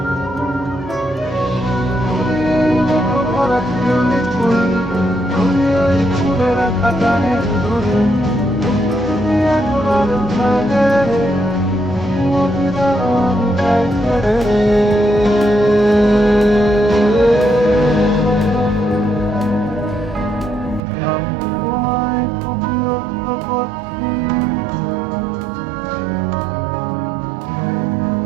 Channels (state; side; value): drops out; left; at 20.8 s